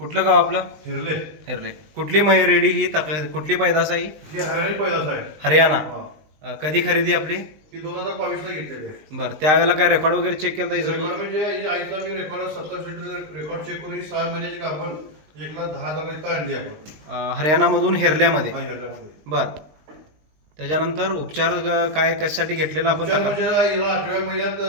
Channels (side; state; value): left; late; 19 ms